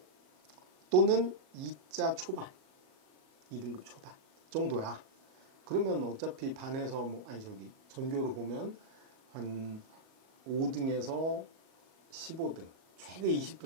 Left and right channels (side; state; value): left; late; 38 ms